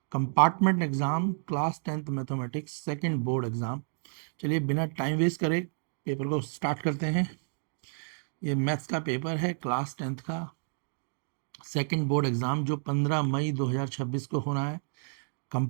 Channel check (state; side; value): silent; left; 58 dB below the other